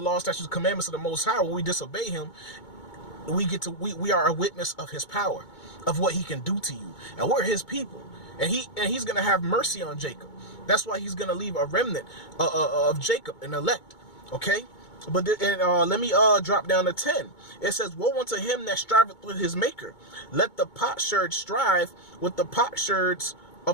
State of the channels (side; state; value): right; late; 2.2 ms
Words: statutes, commandments of the Most High, when we disobey him, we are a witness of his power, of what he can do to you. And we're his people. And he's going to have mercy on Jacob. That's why he's going to leave a remnant of Jacob, an elect. Okay? But let me drop down to 10. It says, woe unto him that striveth with his maker. Let the potsherd strive with the potsherds